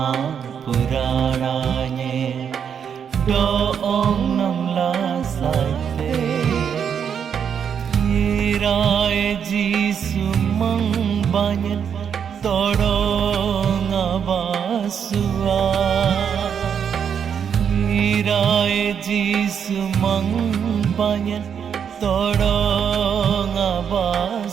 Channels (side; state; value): left; quieter; 7.7 dB